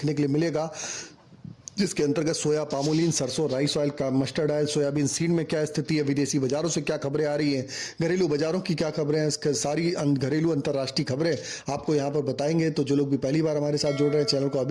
के लिए मिलेगा, जिसके अंतर्गत सोया, पामोलिन, सरसों, राइस ऑयल का, मस्टर्ड ऑयल, सोयाबीन सीड में क्या स्थिति है, विदेशी बाजारों से क्या खबरें आ रही हैं, घरेलू बाजारों की क्या खबरें हैं, इसके सारी घरेलू अंतर्राष्ट्रीय खबरें आपको यहां पर बताएंगे। तो जो लोग भी पहली बार हमारे साथ जुड़ रहे हैं, चैनल को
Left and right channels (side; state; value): both; identical; correlation 1.00